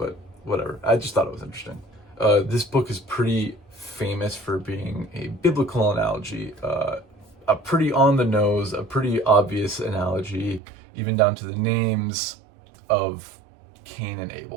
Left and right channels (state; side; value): drops out; left; at 10.6 s